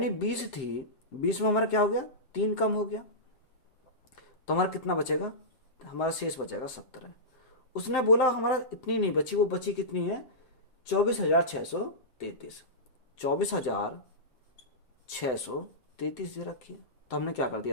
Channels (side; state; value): right; late; 7.7 ms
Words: 20 थी, 20 में हमारा क्या हो गया? 3 कम हो गया तो हमारा कितना बचेगा? हमारा शेष बचेगा 17। उसने बोला हमारा इतनी नहीं बची, वो बची कितनी है? 24,633। 24,633 दे रखी है, तो हमने क्या कर